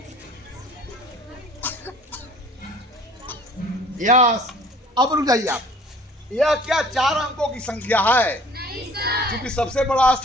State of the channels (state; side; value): normal; both; correlation 0.51